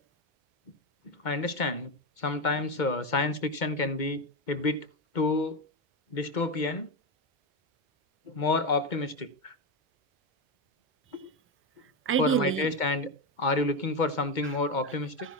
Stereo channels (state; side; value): normal; both; correlation 0.12